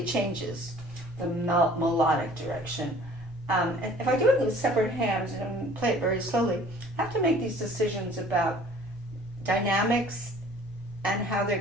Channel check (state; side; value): normal; both; correlation 0.51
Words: changes, the melodic direction. And if I do it with separate hands and play it very slowly, I have to make these decisions about dynamics and how they're